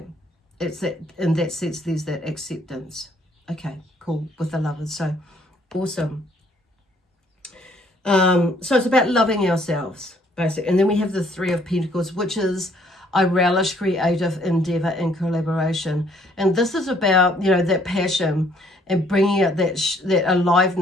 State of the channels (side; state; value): both; normal; correlation 0.64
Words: it's that, in that sense, there's that acceptance. Okay, cool, with the lovers. So awesome. So it's about loving ourselves, basically. And then we have the Three of Pentacles, which is I relish creative endeavor and collaboration. And this is about, you know, that passion and bringing out that